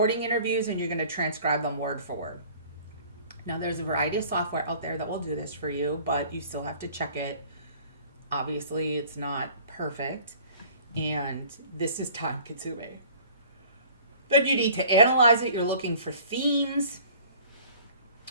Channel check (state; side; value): inverted; both; correlation -0.49